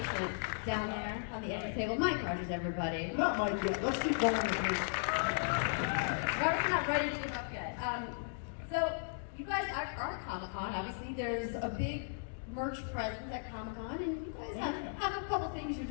down there on the end of the table. Mike Rogers, everybody. Not Mike yet. Let's keep going with this. Robert's not ready to give up yet. So you guys are at Comic-Con. Obviously, there's a big merch presence at Comic-Con, and you guys have a couple things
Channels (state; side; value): silent; right; digital silence